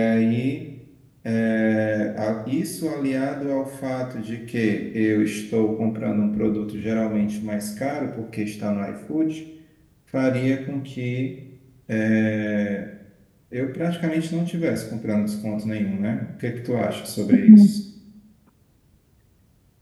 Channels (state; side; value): identical; both; correlation 1.00